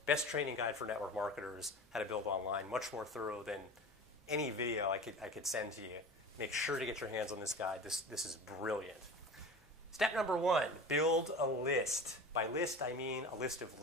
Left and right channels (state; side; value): normal; both; correlation 0.34